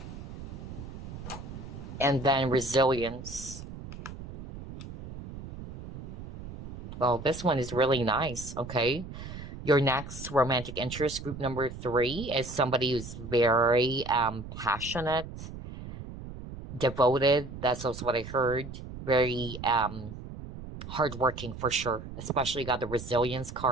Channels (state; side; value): noise; right; rumble, 11 dB below the sound